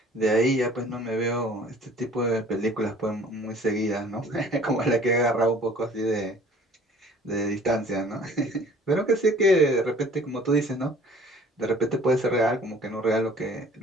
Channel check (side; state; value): both; normal; correlation 0.52